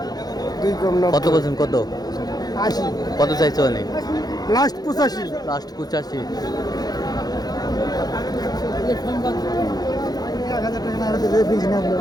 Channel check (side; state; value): right; late; 0.19 ms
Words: কত বলছেন? কত? 80 কত চাইছো অনেক? লাস্ট 85 লাস্ট 85